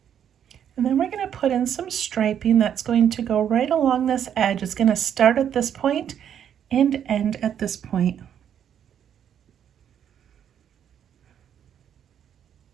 And then we're going to put in some striping that's going to go right along this edge. It's going to start at this point and end at this point.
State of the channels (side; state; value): left; quieter; 9.1 dB